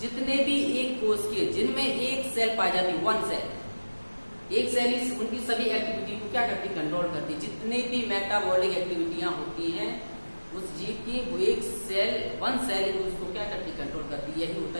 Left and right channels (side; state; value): both; inverted; correlation -1.00